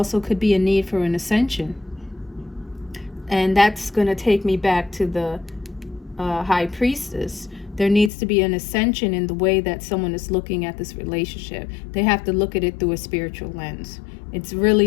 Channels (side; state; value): right; drops out; at 8.1 s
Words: could be a need for an ascension. And that's going to take me back to the High Priestess. There needs to be an ascension in the way that someone is looking at this relationship. They have to look at it through a spiritual lens. It's